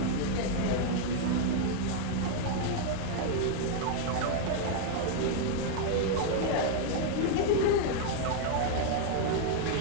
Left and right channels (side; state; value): both; different; correlation 0.00